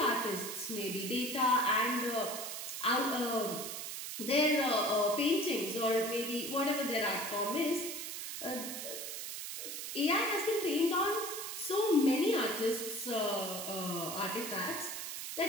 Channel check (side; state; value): right; noise; hiss, 6 dB below the sound